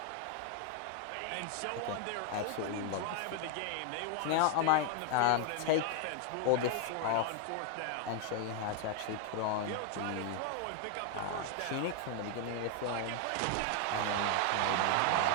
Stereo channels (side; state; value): both; different; correlation 0.00